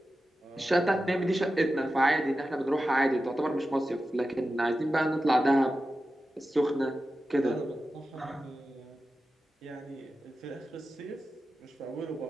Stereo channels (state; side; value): normal; both; correlation 0.93